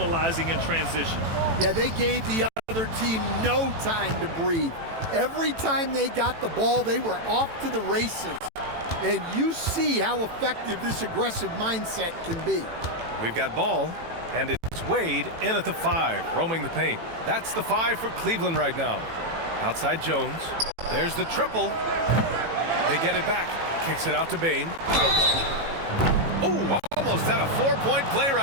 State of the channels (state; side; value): late; left; 18 ms